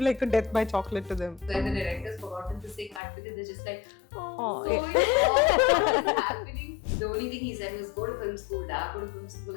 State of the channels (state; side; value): drops out; right; at 3.0 s